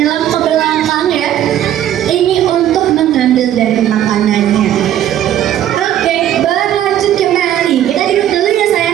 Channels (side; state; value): left; quieter; 11.5 dB